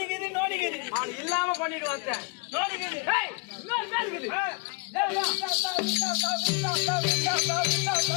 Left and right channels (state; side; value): quieter; right; 34.1 dB